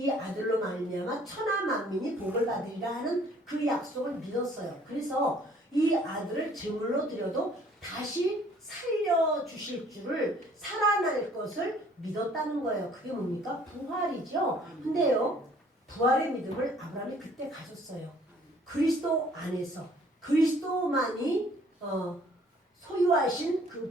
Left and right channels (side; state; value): both; normal; correlation 0.58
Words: 아들로 말미암아 천하 만민이 복을 받으리라 하는 그 약속을 믿었어요. 그래서 이 아들을 제물로 드려도 다시 살려주실 줄을, 살아날 것을 믿었다는 거예요. 그게 뭡니까? 부활이죠. 근데요 부활의 믿음을 아브라함이 그때 가졌어요. 그리스도 안에서 그리스도만이 소유하신 그